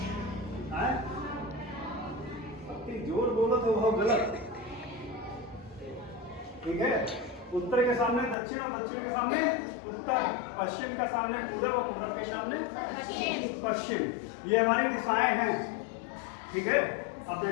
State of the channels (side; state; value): right; drops out; at 8.3 s